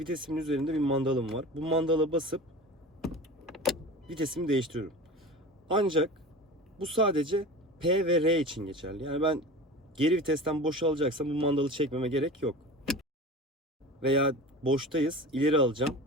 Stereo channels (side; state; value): both; normal; correlation 0.34